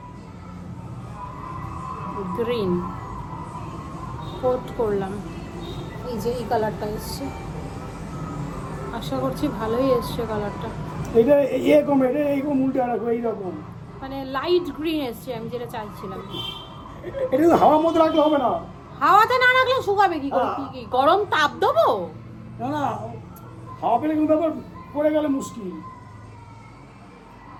গ্রিন কোট করলাম। এই যে এই কালারটা এসছে, আশা করছি ভালোই এসছে কালারটা, এটা এরকম, এটা এইরকম উল্টে রাখো, এইরকম। মানে লাইট গ্রিন এসছে, আমি যেটা চাইছিলাম। এটা তো হাওয়ার মধ্যে রাখলে হবে না। হাওয়াতে না রাখলে শুকাবে কি করে? কি গরম তাপ দেবো? না না, হাওয়া পেলে কিন্তু আবার পড়ে গেলে মুশকিল।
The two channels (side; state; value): both; identical; correlation 1.00